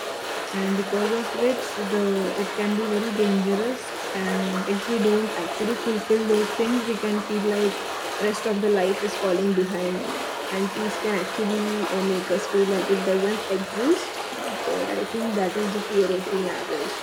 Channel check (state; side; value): identical; both; correlation 1.00